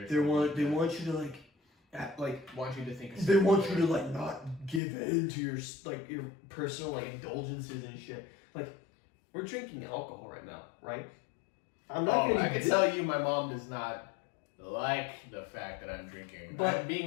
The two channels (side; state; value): right; drops out; at 4.8 s